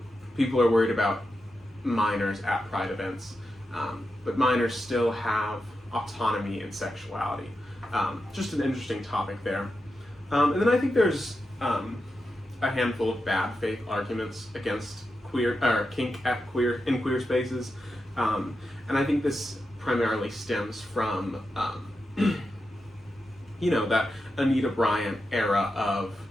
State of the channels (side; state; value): both; normal; correlation 0.88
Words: people are worried about minors at Pride events, but minors still have autonomy and sexuality. Just an interesting topic there. And then I think there's a handful of bad faith arguments against kink in queer spaces, and I think this primarily stems from that Anita Bryant era of,